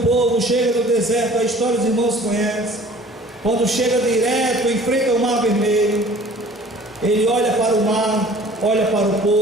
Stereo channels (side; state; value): both; normal; correlation 0.49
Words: chega no deserto, a história dos irmãos conhecem. Quando chega direto, enfrenta o mar vermelho, ele olha para o mar, olha para o